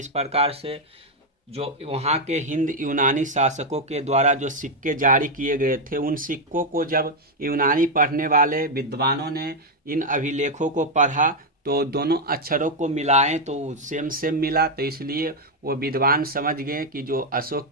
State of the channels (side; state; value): both; normal; correlation 0.02